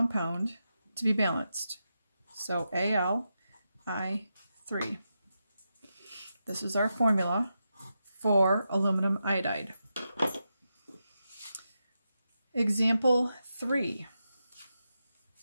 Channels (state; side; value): inverted; both; correlation -0.87